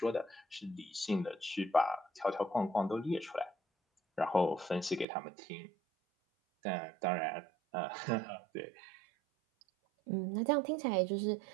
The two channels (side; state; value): left; drops out; at 5.1 s